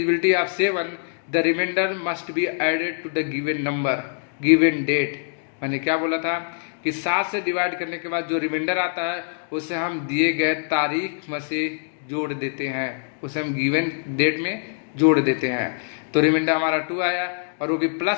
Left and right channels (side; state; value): right; silent; digital silence